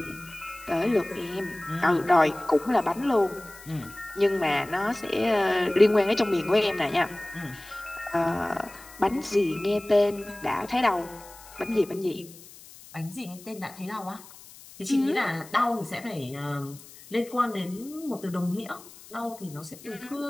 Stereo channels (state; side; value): noise; left; hiss, 20 dB below the sound